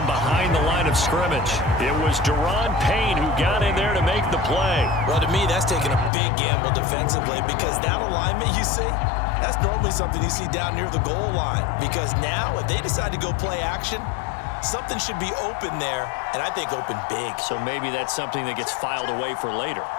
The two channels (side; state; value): right; drops out; at 6.1 s